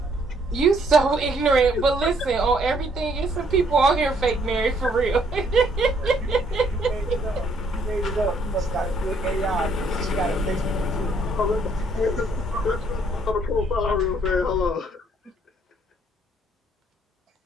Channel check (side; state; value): both; normal; correlation 0.67